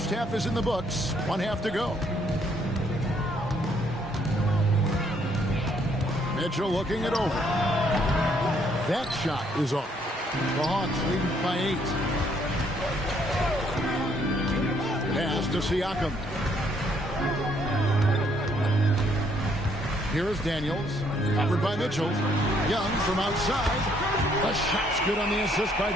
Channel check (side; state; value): both; normal; correlation 0.68